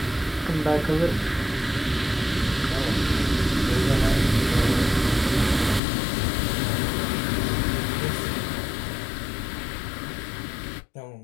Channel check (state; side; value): drops out; right; at 5.8 s